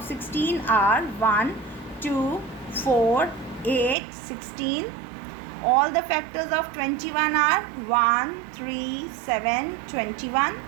16 are 1, 2, 4, 8, 16. All the factors of 21 are 1, 3, 7, 21.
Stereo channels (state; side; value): drops out; left; at 4.0 s